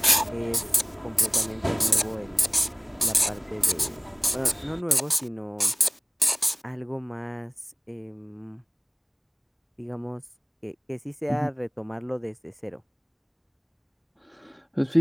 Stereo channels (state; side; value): identical; both; correlation 1.00